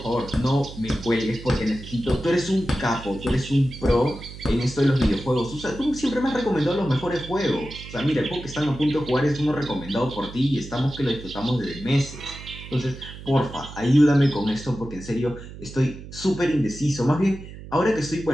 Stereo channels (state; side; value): noise; right; hum, 14 dB below the sound